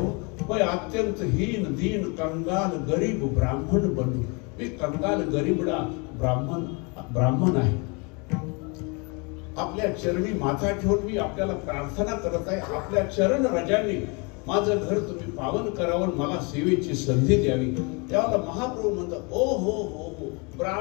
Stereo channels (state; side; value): quieter; right; 31.3 dB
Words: मैं अत्यंत हीन दीन कंगाल गरीब ब्राह्मण बनू. मी कंगाल गरीबडा ब्राह्मण आहे. आपल्या चरणी माथा ठेवून मी आपल्याला प्रार्थना करत आहे. आपल्या चरण रजांनी माझं घर तुम्ही पावन करावं, मला सेवेची संधी द्यावी. त्यावेळेला महाप्रभू म्हणतात, ओ हो हो हो